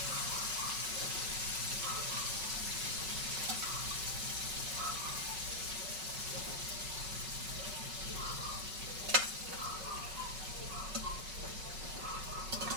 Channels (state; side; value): late; left; 5.3 ms